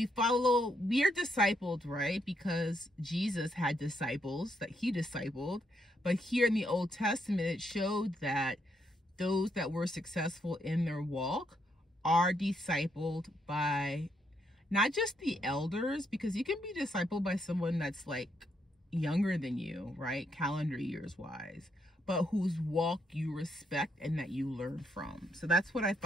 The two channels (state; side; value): normal; both; correlation 0.76